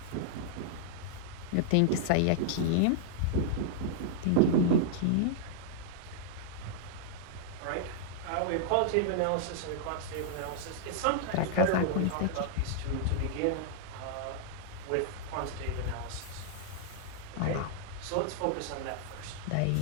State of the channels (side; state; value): both; different; correlation -0.01